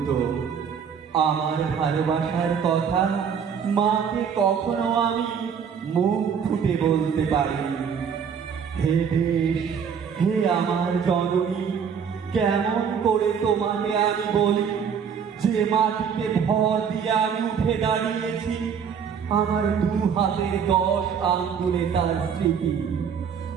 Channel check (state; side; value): quieter; left; 7.1 dB